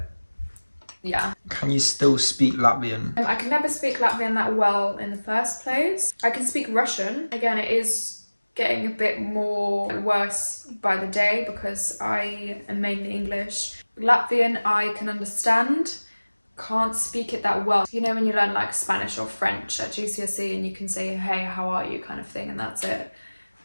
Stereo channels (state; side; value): inverted; both; correlation -1.00